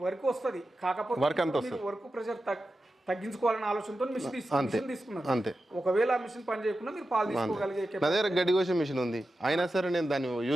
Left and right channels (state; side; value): normal; both; correlation 0.92